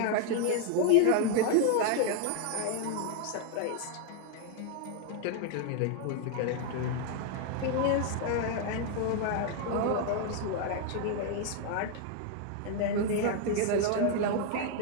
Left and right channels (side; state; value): both; different; correlation 0.00